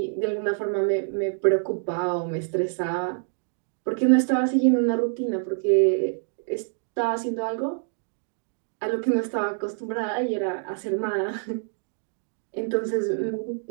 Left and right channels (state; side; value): silent; left; digital silence